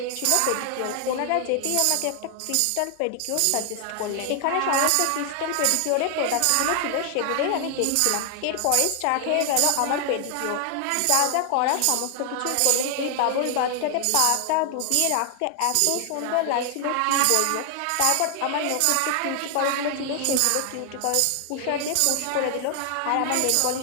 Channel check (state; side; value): different; both; correlation 0.00